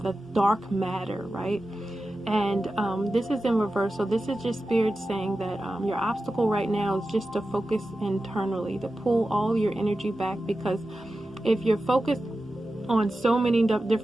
dark matter, right? And this is in reverse. So this is just Spirit saying that your obstacle right now is just to focus internally, to pull all your energy back, because if you're focused on so many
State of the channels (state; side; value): normal; both; correlation 0.93